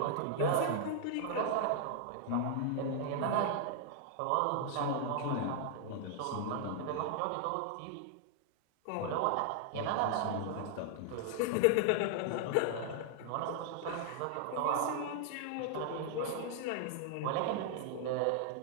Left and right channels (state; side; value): different; both; correlation -0.01